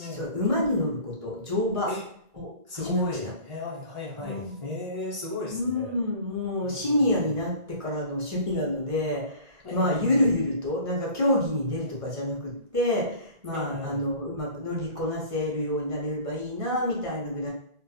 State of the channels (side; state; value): left; late; 1.6 ms